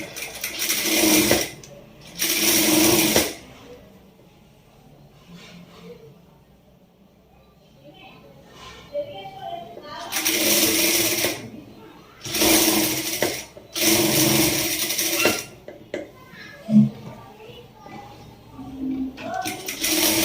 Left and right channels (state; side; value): identical; both; correlation 1.00